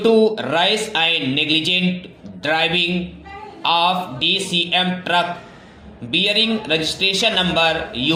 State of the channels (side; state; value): both; identical; correlation 1.00